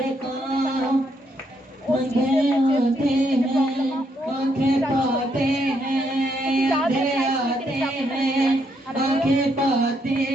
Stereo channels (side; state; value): both; normal; correlation 0.75